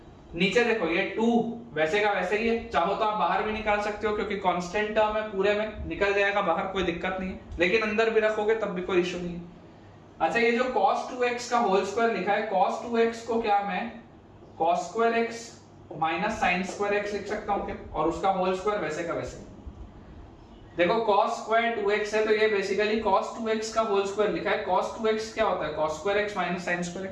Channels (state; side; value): identical; both; correlation 1.00